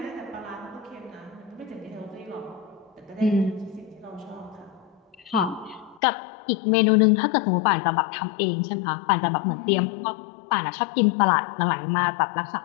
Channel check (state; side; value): drops out; right; at 6.0 s